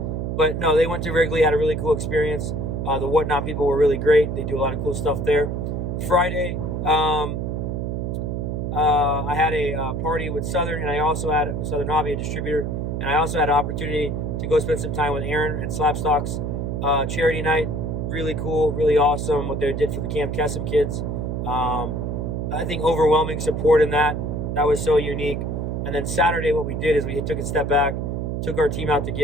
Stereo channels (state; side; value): noise; right; hum, 2 dB below the sound